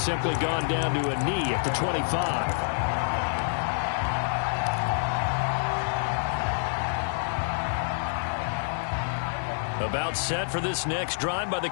gone down to a knee at the 25. About set for this next drive by the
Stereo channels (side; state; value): right; silent; digital silence